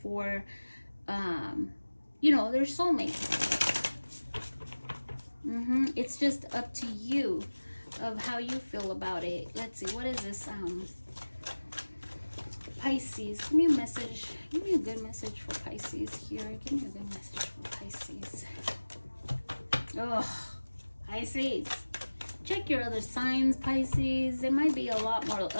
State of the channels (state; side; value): inverted; both; correlation -1.00